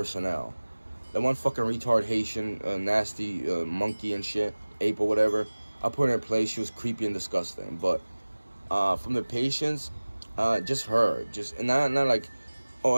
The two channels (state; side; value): inverted; both; correlation -1.00